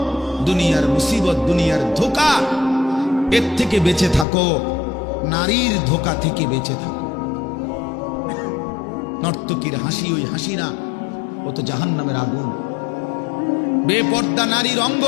দুনিয়ার মুসিবত, দুনিয়ার ধোঁকা, এর থেকে বেঁচে থাকো, নারীর ধোঁকা থেকে বেঁচে থাকো। নর্তকীর হাসি ওই হাসি না, ও তো জাহান্নামের আগুন। বেপর্দা নারীর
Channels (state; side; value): drops out; right; at 4.2 s